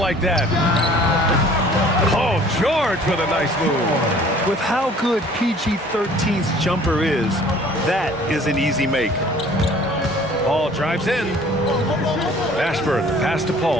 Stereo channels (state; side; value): normal; both; correlation 0.52